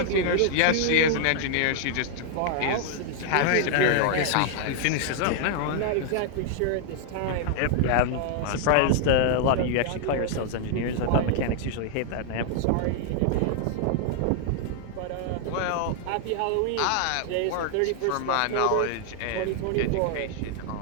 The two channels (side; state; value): both; different; correlation 0.00